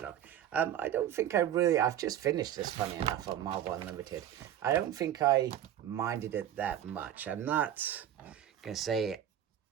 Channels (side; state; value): left; quieter; 10.8 dB